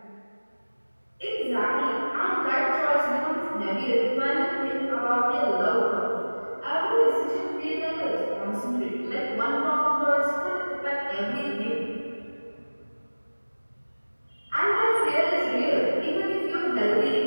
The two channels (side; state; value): both; inverted; correlation -1.00